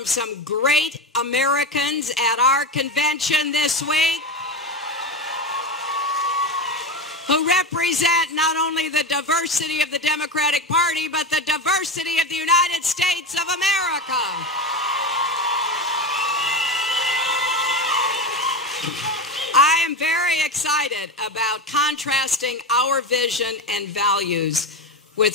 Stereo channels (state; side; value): normal; both; correlation 0.20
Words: some great Americans at our convention this week who represent not only the diversity of the Democratic Party, but the diversity of the United States of America. I am very excited about contrasting our vision and values